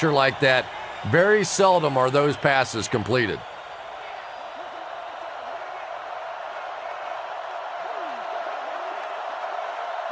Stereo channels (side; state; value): both; identical; correlation 1.00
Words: like that, very seldom are those passes completed.